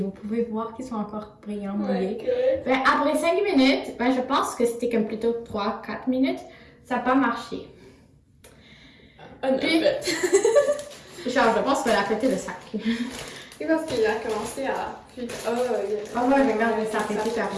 pouvez voir qu'ils sont encore brillants, mouillés. Ouais, Ben, après 5 minutes, ben, je pense que c'était comme plutôt 3-4 minutes. Ça n'a pas marché. Puis, genre, je pense qu'elle a pété le sac. C'est parce qu'il a commencé à. Ah ouais, regarde, ça a pété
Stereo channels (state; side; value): identical; both; correlation 1.00